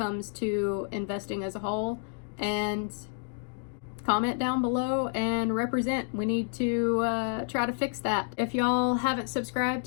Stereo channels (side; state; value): right; silent; 58 dB below the other